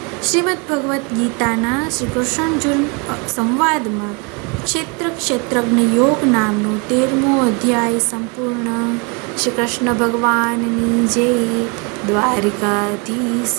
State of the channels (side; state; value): left; quieter; 31.7 dB